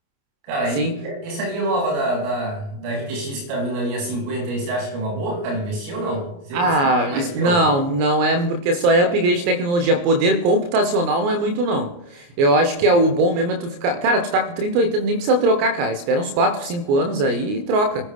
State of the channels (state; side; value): late; left; 29 ms